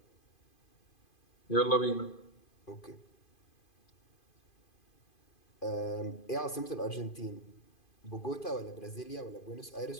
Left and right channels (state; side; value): late; right; 2.5 ms